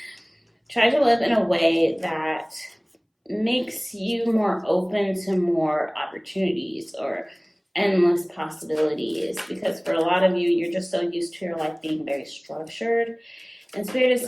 Try to live in a way that makes you more open to more opportunities or endless possibilities, because for a lot of you, you're just so used to your life being very structured, and Spirit is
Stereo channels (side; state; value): both; identical; correlation 1.00